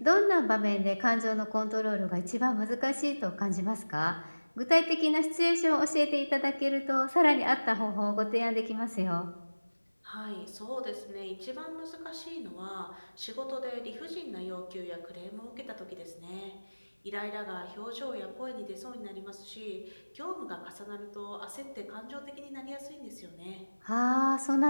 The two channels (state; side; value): inverted; both; correlation -1.00